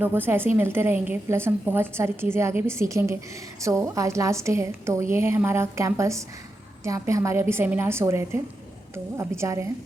से ऐसे ही मिलते रहेंगे। प्लस हम बहुत सारी चीज़ें आगे भी सीखेंगे। सो आज लास्ट डे है, तो ये है हमारा कैंपस जहाँ पे हमारे अभी सेमिनार्स हो रहे थे, तो अभी जा रहे हैं।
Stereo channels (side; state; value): both; normal; correlation 0.87